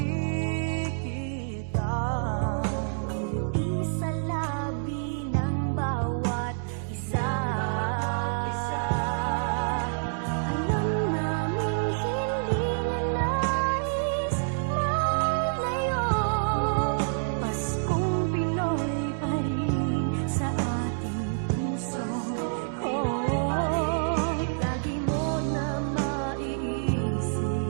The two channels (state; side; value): silent; left; digital silence